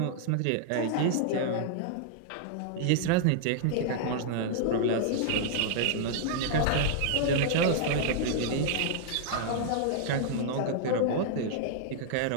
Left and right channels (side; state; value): both; different; correlation -0.01